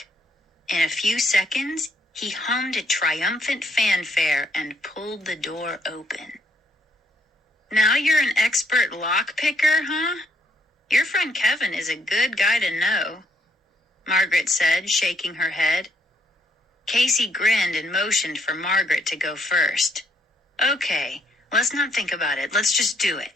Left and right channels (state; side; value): normal; both; correlation 0.71